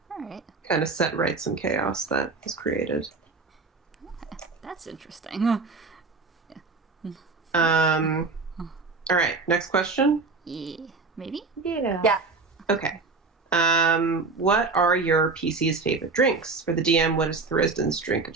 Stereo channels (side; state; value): left; quieter; 4.1 dB